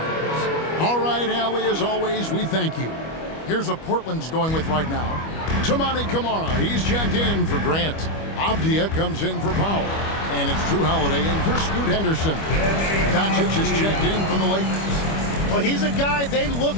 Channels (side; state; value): right; late; 25 ms